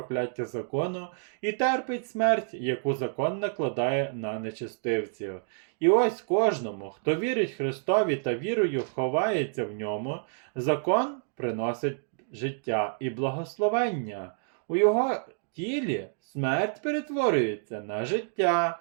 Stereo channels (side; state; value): left; silent; digital silence